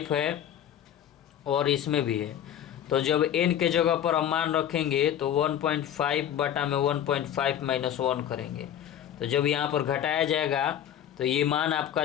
है और इसमें भी है। तो जब n के जगह पर हम मान रखेंगे तो 1.5 बटा में 1.5 माइनस 1 करेंगे, तो जब यहाँ पर घटाया जाएगा तो ये मान आपका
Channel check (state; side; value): quieter; right; 10.2 dB